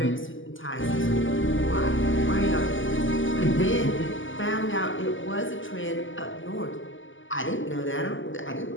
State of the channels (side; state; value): right; late; 0.57 ms